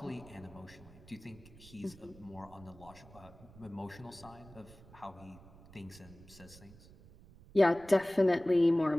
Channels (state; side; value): noise; right; rumble, 21 dB below the sound